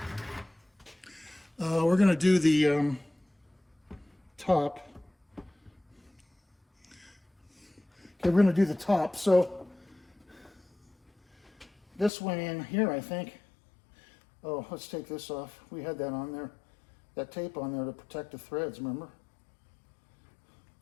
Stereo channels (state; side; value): drops out; right; at 12.1 s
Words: we're going to do the top. Okay, we're going to do the top. So this went in here, I think. Oh, let's take this off. We had that on there, that tape on there to protect the threads, remember?